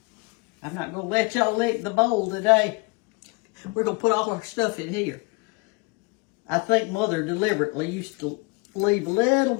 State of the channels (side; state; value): right; quieter; 27.9 dB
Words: I'm not going to let y'all lick the bowl today. We're going to put all our stuff in here. I think Mother deliberately used to leave a little